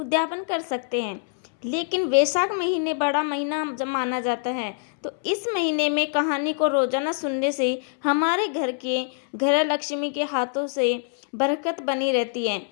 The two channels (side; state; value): right; silent; 62 dB below the other